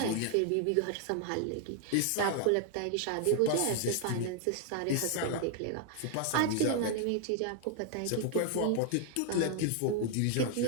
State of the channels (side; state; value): both; different; correlation 0.00